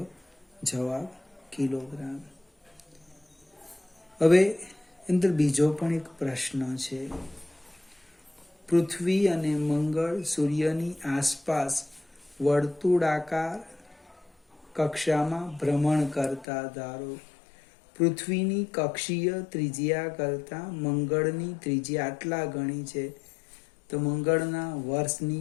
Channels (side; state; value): right; drops out; at 16.4 s